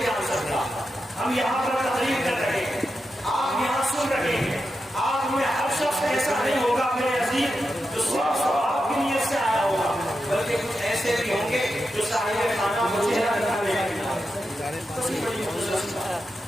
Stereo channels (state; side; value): normal; both; correlation 0.88